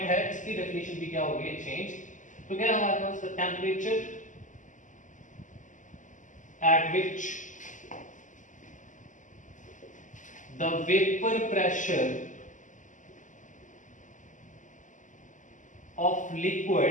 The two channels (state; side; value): late; right; 0.37 ms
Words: है इसकी डेफिनेशन भी क्या हो गई है, चेंज। तो क्या है हमारे पास, the temperature at which the vapour pressure of